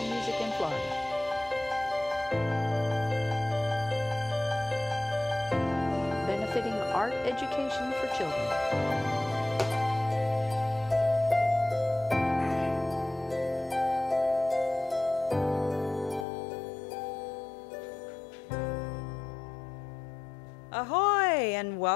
music in Florida. Benefiting art education for children. Ahoy and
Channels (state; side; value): drops out; right; at 16.2 s